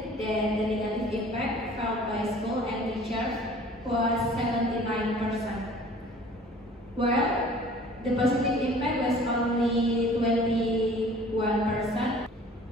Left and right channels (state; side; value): normal; both; correlation 0.49